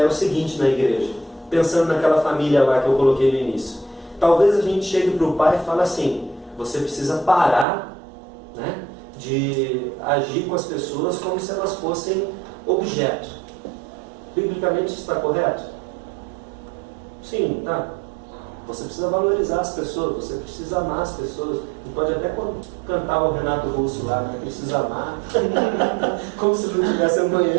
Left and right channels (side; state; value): left; drops out; at 7.7 s